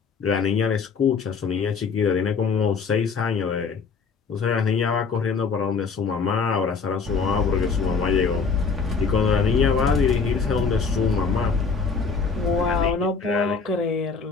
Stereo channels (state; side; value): quieter; right; 5.2 dB